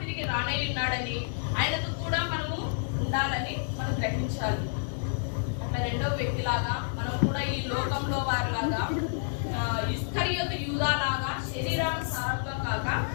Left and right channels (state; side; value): silent; right; digital silence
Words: రానై ఉన్నాడని, ఆయనతో కూడా మనము ఉండాలని మనం గ్రహించాలి. అట్లా రెండో వ్యక్తిలాగా మనం కూడా ఈ లోకంలో వారిలాగా ఇస్కరియోతు యూదాలాగా శరీరానుసారంగా కాక